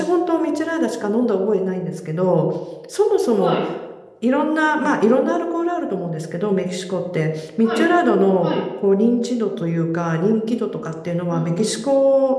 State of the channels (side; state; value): both; identical; correlation 1.00